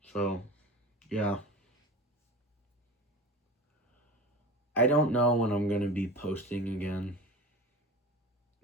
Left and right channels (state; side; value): normal; both; correlation 0.32